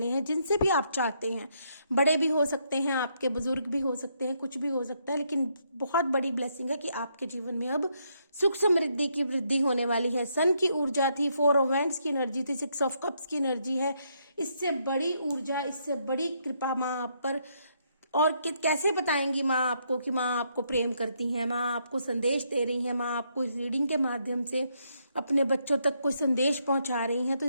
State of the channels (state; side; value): inverted; both; correlation -0.75